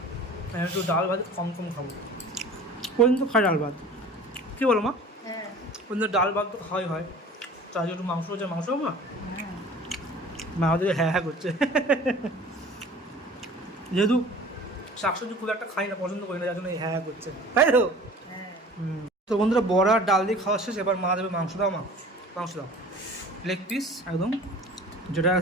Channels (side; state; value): both; normal; correlation 0.44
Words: একটু ডাল ভাত কম কম খাবো। পর্যন্ত খাই ডাল ভাত, কী বলো মা? হ্যাঁ পর্যন্ত ডাল ভাত তো খাওয়াই হয়, তার একটু মাংস হচ্ছে, মাংস মা হ্যাঁ মা আমাদের হ্যাঁ হ্যাঁ করছে। যেহেতু শাকসবজি খুব একটা খাই না, পছন্দ করি না, যার জন্য এই হ্যাঁ হ্যাঁ করছে, তাই তো? হ্যাঁ। তো বন্ধুরা বড়া ডাল দিয়ে খাওয়া শেষ, এবার মা দেবে মাংস। দাও মা, মাংস দাও, লেগ পিস একদম, যেটা